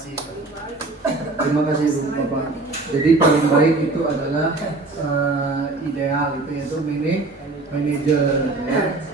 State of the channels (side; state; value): left; quieter; 3.3 dB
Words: Terima kasih Bu Bapak. Jadi paling baik itu adalah ideal itu yaitu manajer. Ya.